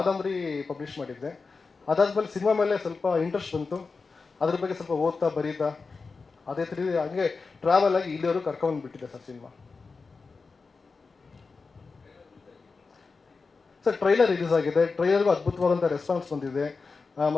ಪಬ್ಲಿಷ್ ಮಾಡಿದ್ದೆ. ಅದಾದಮೇಲೆ ಸಿನಿಮಾ ಮೇಲೆ ಸ್ವಲ್ಪ ಇಂಟ್ರೆಸ್ಟ್ ಬಂತು. ಅದ್ರ ಬಗ್ಗೆ ಸ್ವಲ್ಪ ಓದ್ತಾ ಬರೀತಾ ಅದೇ ಥರ ಹಂಗೆ ಟ್ರಾವೆಲ್ ಆಗಿ ಇಲ್ಲಿಯವರು ಕರ್ಕೊಂಡು ಬಿಟ್ಟಿದೆ sir cinema. Sir trailer release ಆಗಿದೆ. ಟ್ರೈಲರ್ಗೂ ಅದ್ಭುತವಾದಂಥ ರೆಸ್ಪಾನ್ಸ್ ಬಂದಿದೆ.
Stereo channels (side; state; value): right; quieter; 4.4 dB